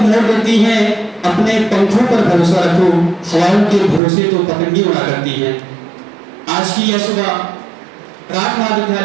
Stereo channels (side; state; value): left; drops out; at 4.0 s